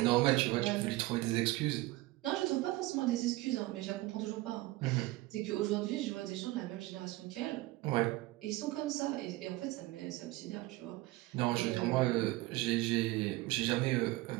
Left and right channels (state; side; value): quieter; left; 19.3 dB